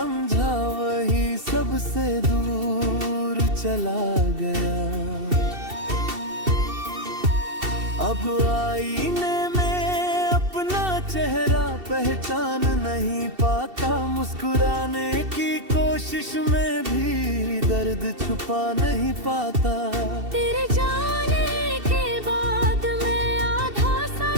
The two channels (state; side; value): late; left; 2.7 ms